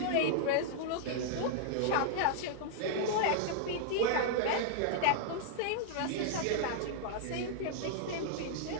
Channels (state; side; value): different; both; correlation -0.01